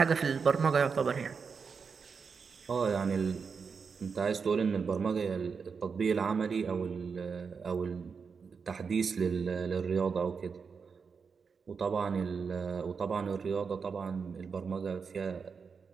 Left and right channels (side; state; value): left; quieter; 5.6 dB